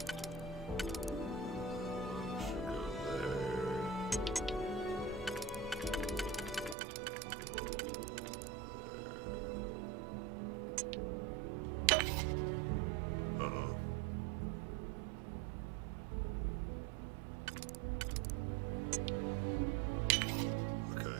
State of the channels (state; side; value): drops out; left; at 6.8 s